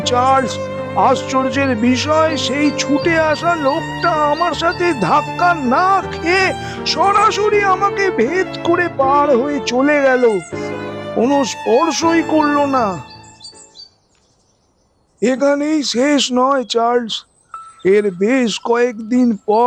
চার্লস, আশ্চর্যের বিষয়, সেই ছুটে আসা লোকটা আমার সাথে ধাক্কা না খেয়ে সরাসরি আমাকে ভেদ করে পার হয়ে চলে গেল, কোনো স্পর্শই করলো না। এখানেই শেষ নয় চার্লস। এর বেশ কয়েকদিন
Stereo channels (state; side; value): identical; both; correlation 1.00